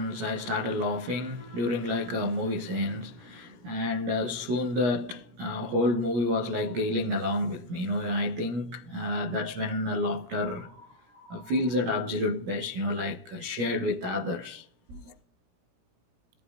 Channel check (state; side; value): late; left; 17 ms